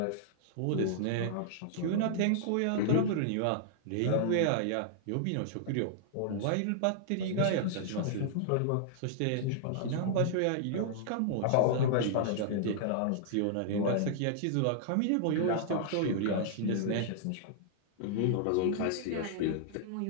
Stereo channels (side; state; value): both; different; correlation -0.01